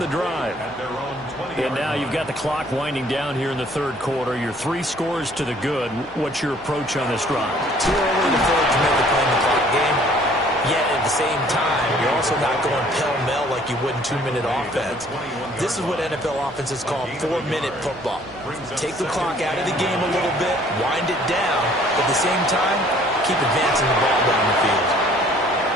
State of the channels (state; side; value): noise; right; hum, 27 dB below the sound